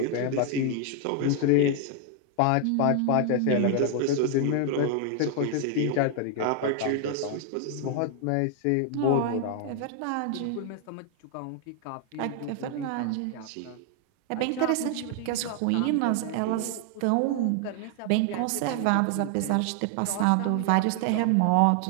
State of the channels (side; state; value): both; different; correlation 0.00